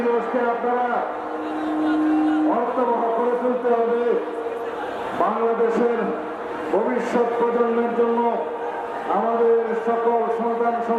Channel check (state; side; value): identical; both; correlation 1.00